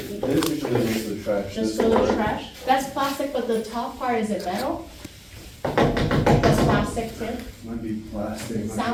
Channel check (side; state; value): both; identical; correlation 1.00